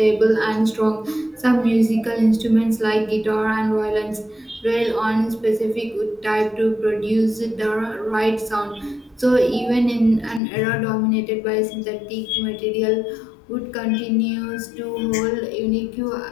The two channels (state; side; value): drops out; right; at 10.4 s